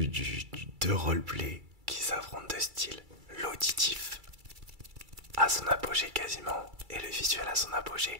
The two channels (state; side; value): late; left; 2.3 ms